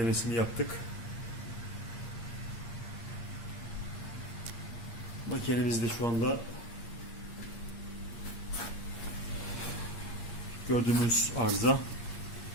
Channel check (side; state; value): right; late; 8.6 ms